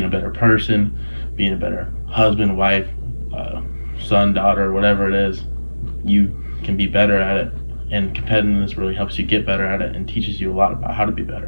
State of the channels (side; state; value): both; inverted; correlation -1.00